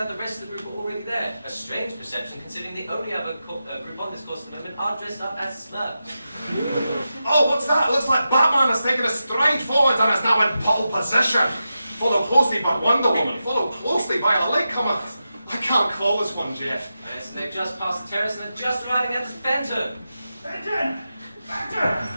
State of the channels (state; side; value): inverted; both; correlation -0.90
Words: the rest of the group are already there. A strange perception considering the only other group on this course at the moment are dressed up as Smurfs. Oh, what's that? It looks like Batman has taken a stride forward and is now in pole position. Followed closely by Wonder Woman, followed closely by a latecomer. I can't call this one, Jeff. Yes, they've just passed the Terrace and are just arriving at the Fenton. Fenton! Fenton!